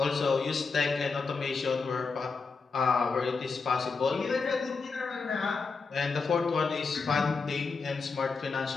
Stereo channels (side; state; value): right; quieter; 4.6 dB